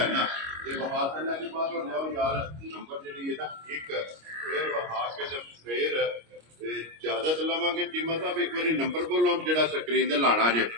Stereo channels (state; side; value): late; left; 25 ms